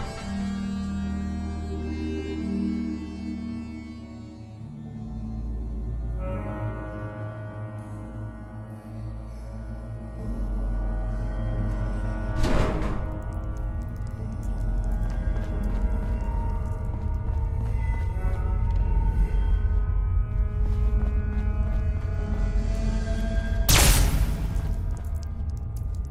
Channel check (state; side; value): identical; both; correlation 1.00